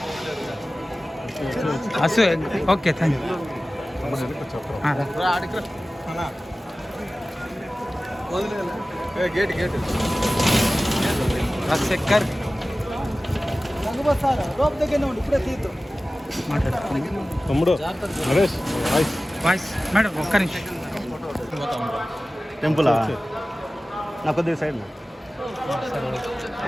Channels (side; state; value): both; normal; correlation 0.96